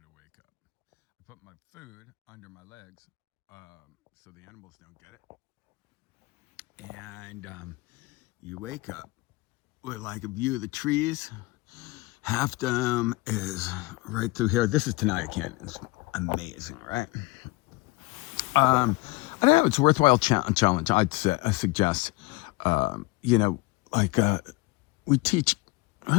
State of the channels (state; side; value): quieter; right; 22.3 dB